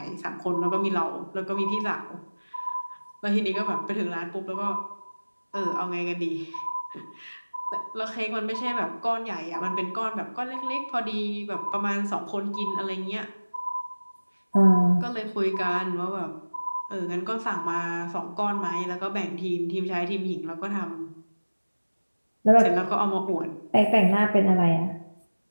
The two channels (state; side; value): inverted; both; correlation -1.00